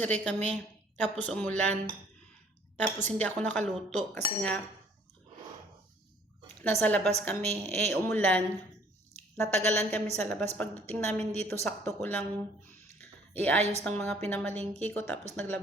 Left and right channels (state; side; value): normal; both; correlation 0.58